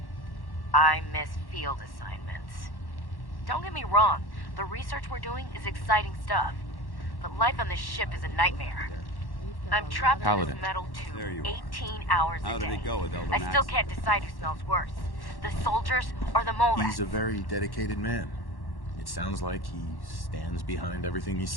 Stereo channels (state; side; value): late; right; 1.1 ms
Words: I miss field assignments. Don't get me wrong, the research we're doing is exciting stuff, but life on this ship is a nightmare. I'm trapped in this metal tube 18 hours a day. How did it go with Elder I still can't decide who smells worse, the soldiers or the mole He's a very dedicated man. It sounds like he stands behind everything he's